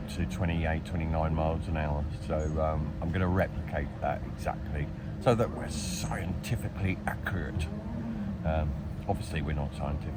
to 28, 29 miles an hour. So I'm going to replicate that exactly so that we're scientifically accurate. Obviously we're not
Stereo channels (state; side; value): identical; both; correlation 1.00